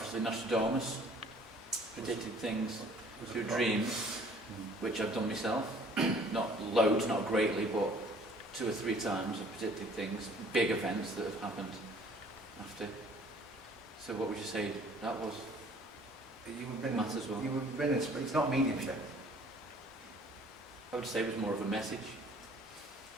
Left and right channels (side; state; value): both; normal; correlation 0.55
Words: Nostradamus predicted things through dreams, which I've done myself. Not loads, not greatly, but 2 or 3 times I've predicted things, big events that have happened after. So what would you say that was? Matters well. It's not mediumship. I would say it was more of a message.